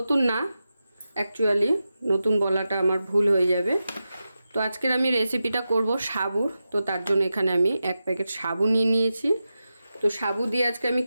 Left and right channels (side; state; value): both; inverted; correlation -0.91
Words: না, অ্যাকচুয়ালি নতুন বলাটা আমার ভুল হয়ে যাবে। তো আজকের আমি রেসিপিটা করব সাবুর। তো তার জন্য এখানে আমি 1 প্যাকেট সাবু নিয়ে নিয়েছি। তো সাবু দিয়ে আজকে আমি